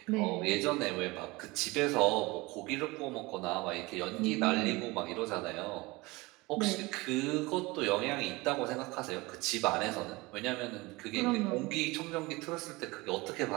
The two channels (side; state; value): left; quieter; 23.0 dB